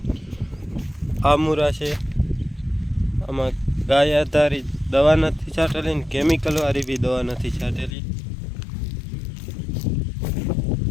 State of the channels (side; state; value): right; drops out; at 8.0 s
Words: આ મૂરા છે, આમાં ગાય આધારિત દવા નથી છાંટેલી ને કેમિકલવાળી બી દવા નથી છાંટેલી.